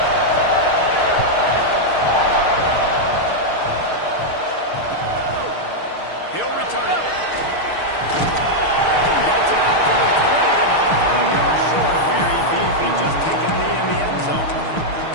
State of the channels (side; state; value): right; late; 6.5 ms